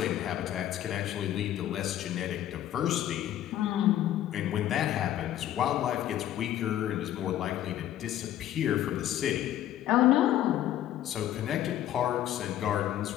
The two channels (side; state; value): right; quieter; 12.3 dB